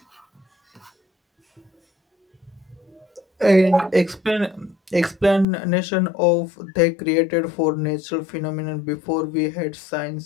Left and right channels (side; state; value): right; drops out; at 5.5 s